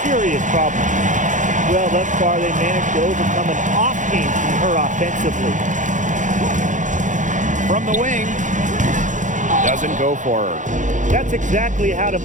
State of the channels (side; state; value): left; late; 0.36 ms